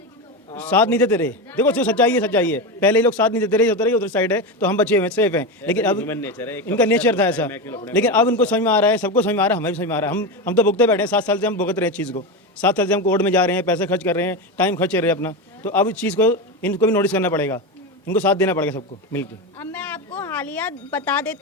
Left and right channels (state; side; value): normal; both; correlation 0.17